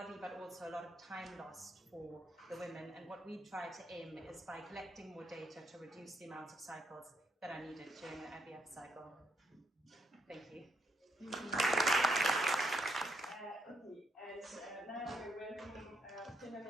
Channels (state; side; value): normal; both; correlation 0.76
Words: but also a lot of time lost for the women. And what we try to aim is by collecting more data to reduce the amount of cycles that are needed during an IVF cycle. Thank you. Okay, and now we're welcoming